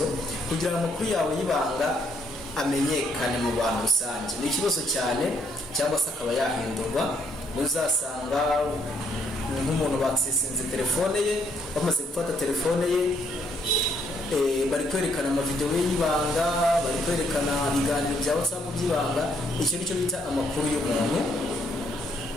kugira ngo amakuru yawe y'ibanga amenyekane mu bantu rusange ni ikibazo cyane, cyangwa se akaba yahindurwa. Uzasanga nk'umuntu bakisinze telefone ye, bamaze gufata telefone ye, bari kwerekana amavideo y'ibanga, bari kwerekana ibiganiro bya WhatsApp by'ibanga. Icyo nicyo bita amakuru y'umuntu,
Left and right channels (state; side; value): normal; both; correlation 0.71